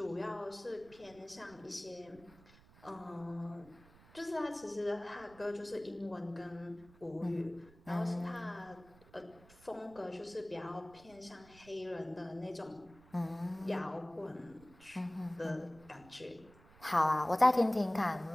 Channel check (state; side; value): noise; right; rumble, 24 dB below the sound